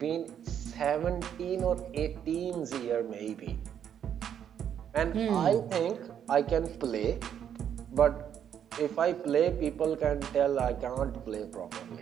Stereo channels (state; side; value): quieter; left; 9.0 dB